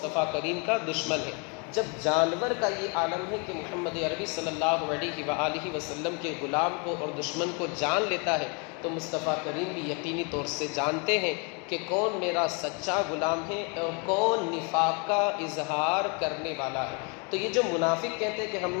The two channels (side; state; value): right; quieter; 33.6 dB